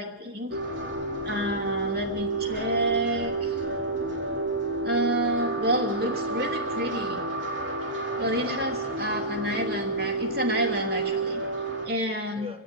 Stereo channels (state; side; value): normal; both; correlation -0.15